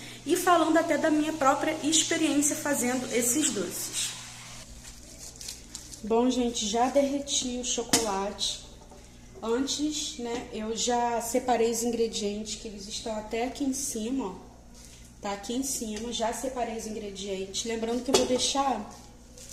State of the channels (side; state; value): both; identical; correlation 1.00